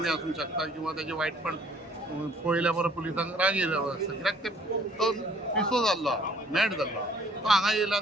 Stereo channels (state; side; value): normal; both; correlation 0.58